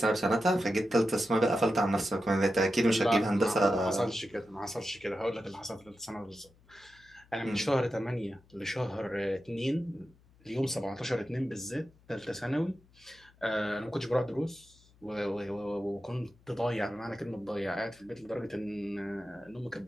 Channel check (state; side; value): noise; left; hum, 29 dB below the sound